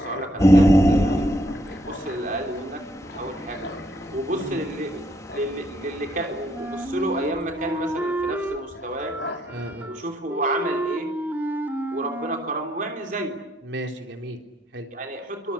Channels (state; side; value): normal; both; correlation 0.71